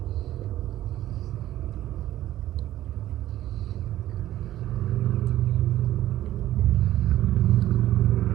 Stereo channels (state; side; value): quieter; left; 13.7 dB